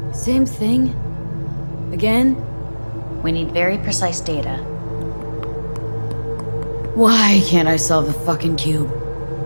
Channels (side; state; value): both; inverted; correlation -1.00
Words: Same thing? Again? We need very precise data. Why can't I solve the fucking cube?